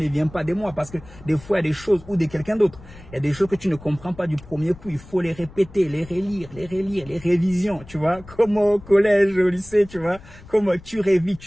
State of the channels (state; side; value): noise; left; rumble, 19 dB below the sound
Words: vient pas de moi, parce que des fois il y a des choses ou de quelqu'un d'autre. Il y a des choses que tu ne comprends pas du premier coup, il faut les répéter, les relire, les révisions, tu vois, comme au collège, au lycée, tu vois, comme tu